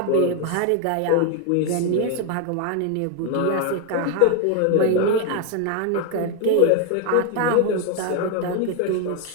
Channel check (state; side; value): different; both; correlation 0.01